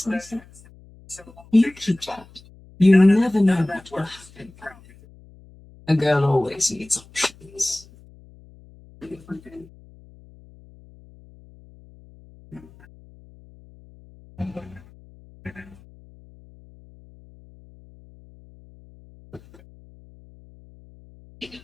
You keep that. You never know what will happen. A girl always needs options.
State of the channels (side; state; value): left; noise; hum, 24 dB below the sound